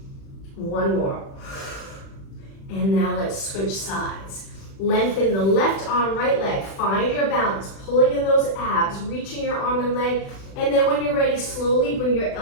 1 more. And now let's switch sides. Lengthen the left arm, right leg. Find your balance, pulling in those abs, reaching your arm and leg. And then when you're ready, slowly bring your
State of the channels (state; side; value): late; right; 36 ms